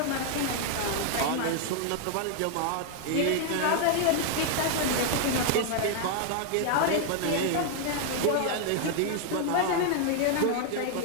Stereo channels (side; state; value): both; different; correlation 0.00